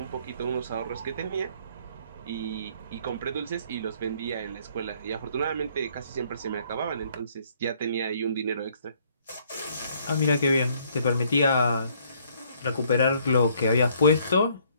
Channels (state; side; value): inverted; both; correlation -0.64